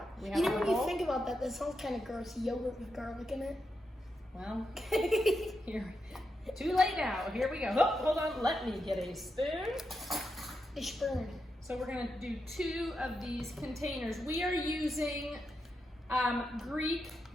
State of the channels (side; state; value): both; normal; correlation 0.86